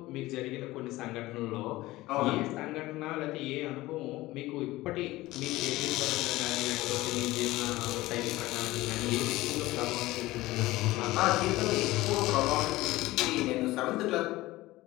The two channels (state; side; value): quieter; right; 18.3 dB